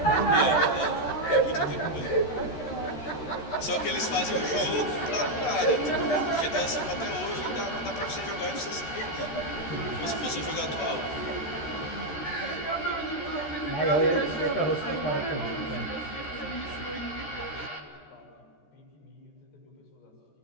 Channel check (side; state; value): right; late; 13 ms